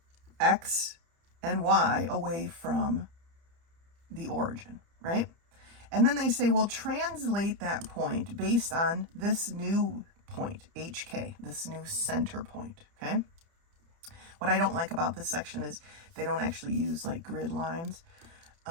x and y away from the origin, right? And then they say, well, translate that point based on this new point, hk, this new center point, okay? What I don't like about this section is they don't actually use like grid lines.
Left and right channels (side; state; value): left; late; 30 ms